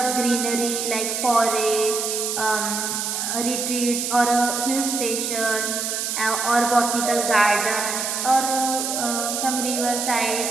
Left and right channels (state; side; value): noise; right; hiss, 2 dB below the sound